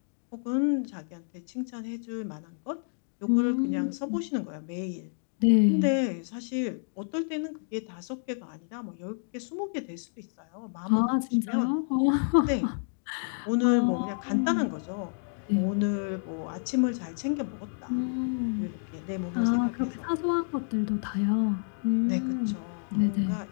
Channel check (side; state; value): right; silent; digital silence